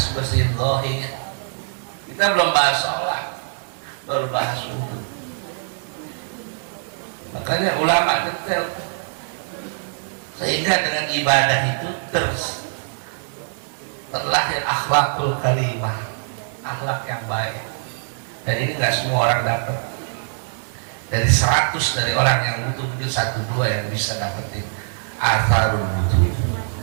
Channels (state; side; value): silent; left; digital silence